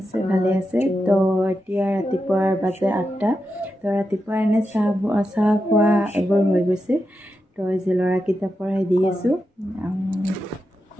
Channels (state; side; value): normal; both; correlation 0.88